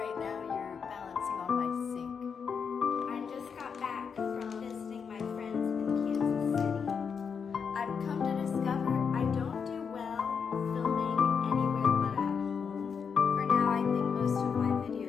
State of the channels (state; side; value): quieter; right; 6.3 dB